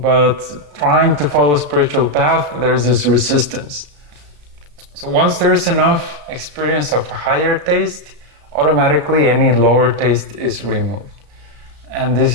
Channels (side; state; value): left; late; 34 ms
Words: trying to follow spiritual path, there's this resistance. So once there's enough experience of a higher taste, automatically any lower taste is removed. And